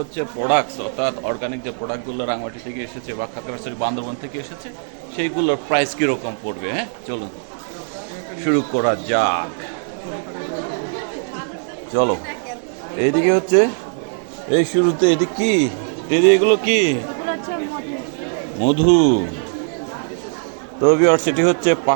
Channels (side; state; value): left; silent; 65 dB below the other